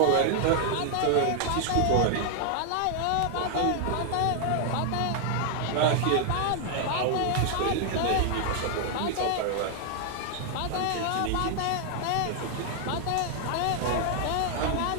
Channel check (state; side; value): different; both; correlation 0.00